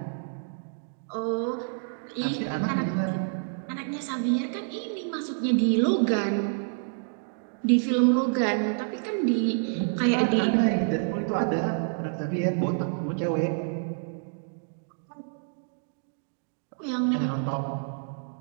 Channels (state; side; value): silent; left; digital silence